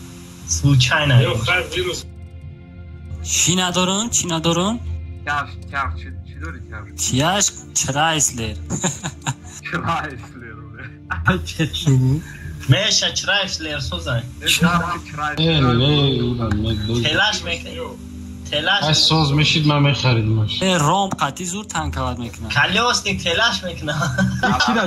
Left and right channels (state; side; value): identical; both; correlation 1.00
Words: Случайно. چی ندارن؟ چی ندارن؟ Çaj çi dori çaj. چیاش چرایسلر. Çrayisler. Meşe çrayisler sozay. Telaş mekne. Telaş. Ay soz meşid ma mekharidmash. رام قطعی زور تنکواد میکنن. Kalyosnik telaş mekne.